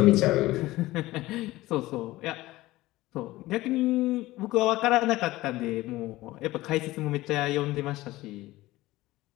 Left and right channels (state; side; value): quieter; right; 17.9 dB